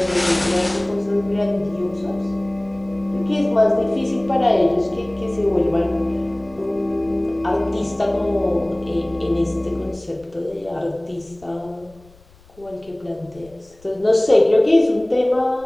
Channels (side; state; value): left; noise; rumble, 27 dB below the sound